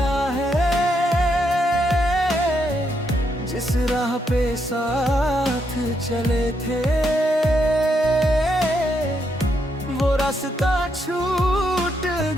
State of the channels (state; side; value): normal; both; correlation 0.78